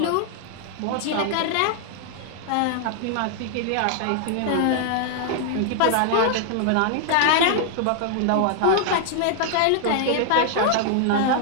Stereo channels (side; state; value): both; different; correlation 0.00